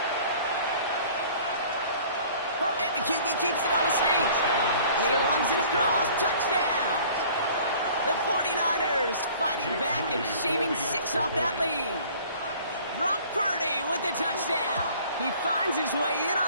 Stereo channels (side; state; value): both; inverted; correlation -0.50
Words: And the QB keeps it on the sneak. And he runs it across. Touchdown. The 49ers fighting back and shaving 6 off that lead. Brock Purdy with the touchdown. He finds his way in